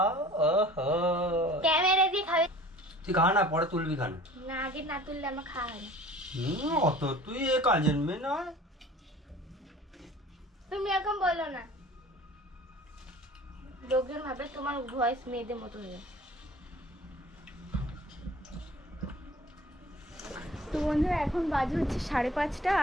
ওহো, ক্যামেরা দিয়ে খাবে। তুই খা না, পরে তুলবি খানা। না, আগে না তুললে আমার খাওয়া হয় না। অত তুই এ কাজের মেয়ে নয়। তুমি এখন বলো না, লোকজন ভাবে তোমার ভয়েস মেয়েদের মতো হয়ে যায়। তো বন্ধুরা, এখন বাজে হচ্ছে 5:30,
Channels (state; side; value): normal; both; correlation 0.46